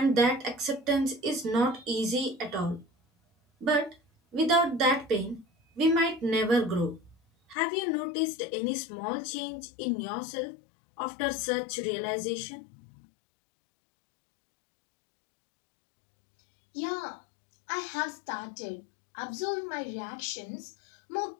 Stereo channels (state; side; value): drops out; right; at 7.6 s